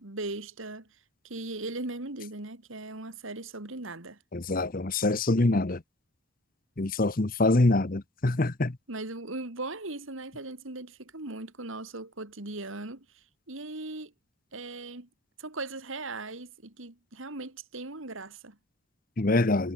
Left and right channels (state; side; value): normal; both; correlation 0.49